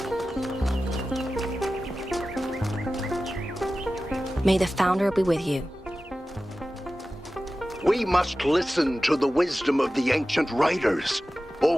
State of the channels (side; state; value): both; normal; correlation 0.95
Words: May the Founder be with you. We must listen to the wisdom of the ancient writers, or